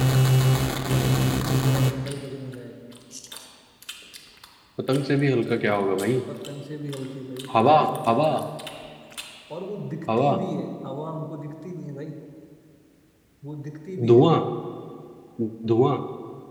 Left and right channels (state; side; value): identical; both; correlation 1.00